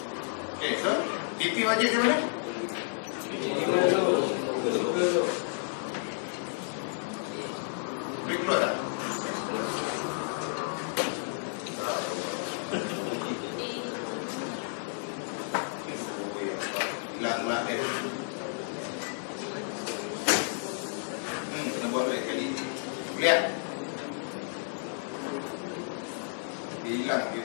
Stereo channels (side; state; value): right; silent; digital silence